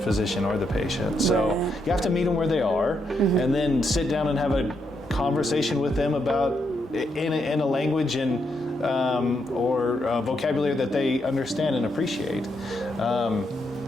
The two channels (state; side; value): normal; both; correlation 0.79